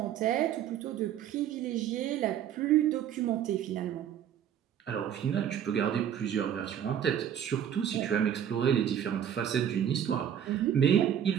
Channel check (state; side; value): quieter; left; 9.6 dB